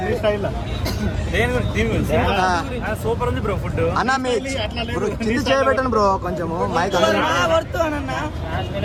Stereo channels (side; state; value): both; identical; correlation 1.00